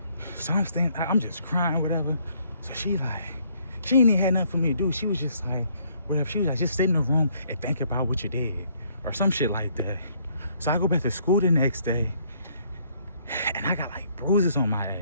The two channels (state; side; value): inverted; both; correlation -0.66